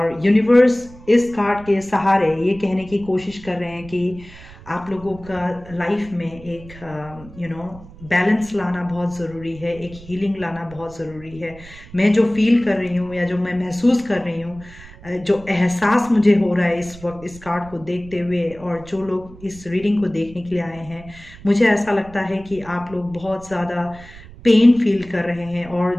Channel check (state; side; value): noise; right; rumble, 19 dB below the sound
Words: यूनिवर्स इस कार्ड के सहारे ये कहने की कोशिश कर रहे हैं कि आप लोगों का लाइफ में एक बैलेंस लाना बहुत ज़रूरी है, एक हीलिंग लाना बहुत ज़रूरी है। मैं जो फील कर रही हूँ या जो मैं महसूस कर रही हूँ, जो एहसास मुझे हो रहा है इस वक्त इस कार्ड को देखते हुए, और जो लोग इस रीडिंग को देखने के लिए आए हैं, मुझे ऐसा लगता है कि आप लोग बहुत ज़्यादा पेन फील कर रहे हैं,